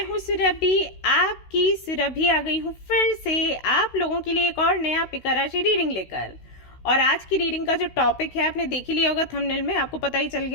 हूँ सुरभि, आपकी सुरभि आ गई हूँ फिर से आप लोगों के लिए एक और नया पिका राशि रीडिंग लेकर। और आज की रीडिंग का जो टॉपिक है आपने देख ही लिया होगा थंबनेल में, आपको पता ही चल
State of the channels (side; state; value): right; late; 16 ms